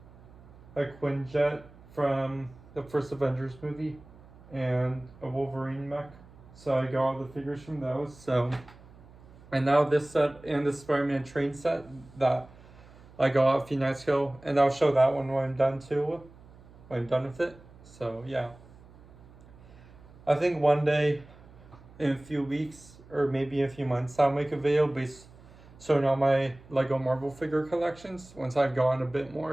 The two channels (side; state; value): right; noise; hum, 22 dB below the sound